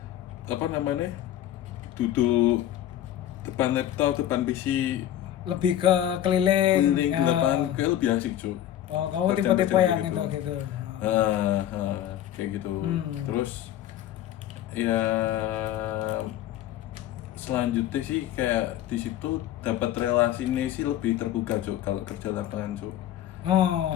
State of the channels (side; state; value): right; quieter; 12.1 dB